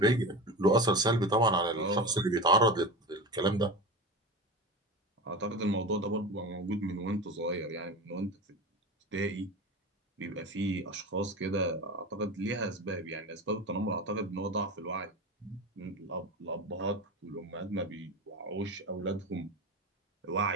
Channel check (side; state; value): both; normal; correlation 0.26